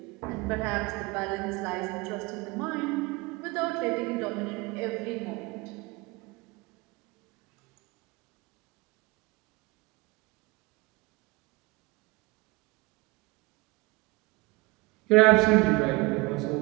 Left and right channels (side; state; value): left; quieter; 24.1 dB